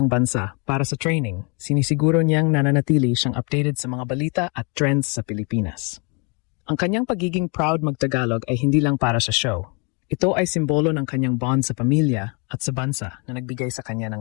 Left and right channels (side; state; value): right; quieter; 33.7 dB